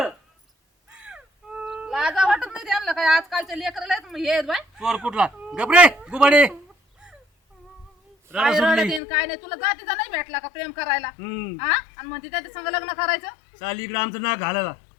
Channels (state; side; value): drops out; right; at 9.0 s